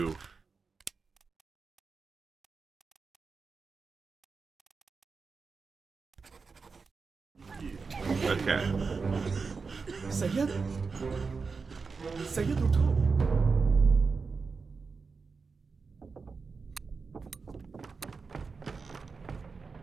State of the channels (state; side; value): quieter; left; 4.8 dB